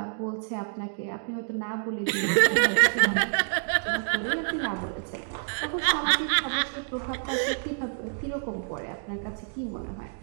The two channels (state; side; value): silent; left; digital silence